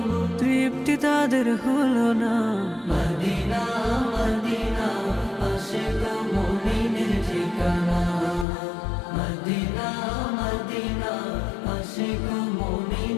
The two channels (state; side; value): drops out; right; at 8.5 s